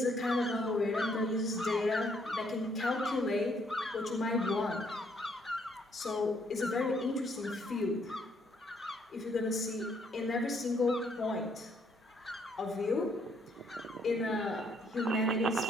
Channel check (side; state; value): both; normal; correlation 0.69